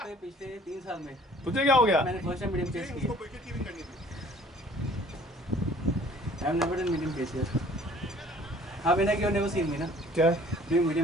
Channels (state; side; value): normal; both; correlation 0.53